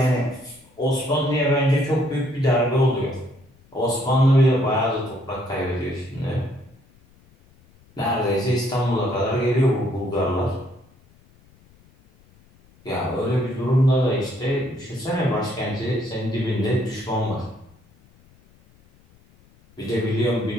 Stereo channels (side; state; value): left; noise; rumble, 30 dB below the sound